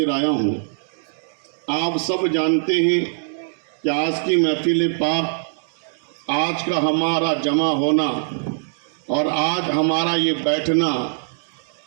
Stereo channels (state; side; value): silent; left; digital silence